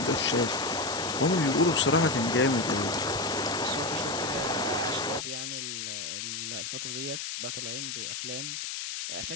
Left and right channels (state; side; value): noise; left; hiss, 5 dB below the sound